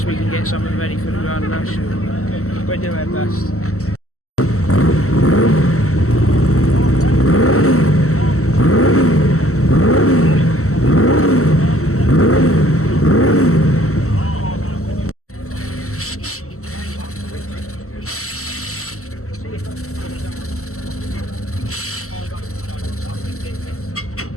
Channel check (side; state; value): right; late; 0.63 ms